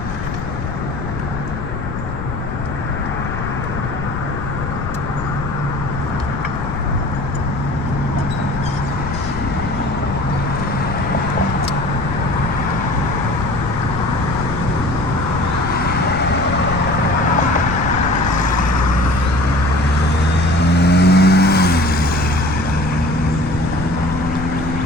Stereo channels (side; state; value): left; noise; rumble, 5 dB below the sound